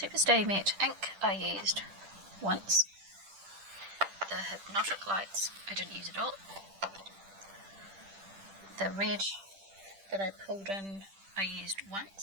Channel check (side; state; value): left; late; 10 ms